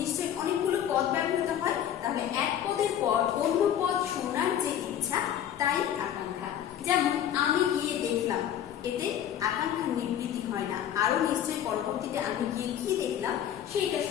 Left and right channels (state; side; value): quieter; right; 10.2 dB